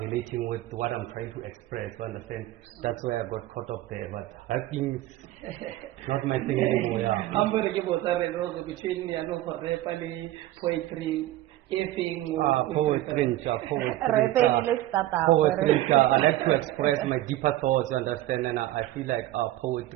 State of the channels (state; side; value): quieter; left; 15.2 dB